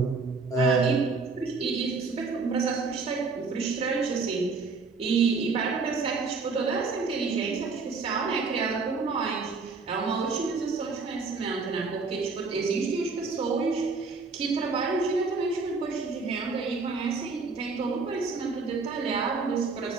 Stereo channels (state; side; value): quieter; left; 4.4 dB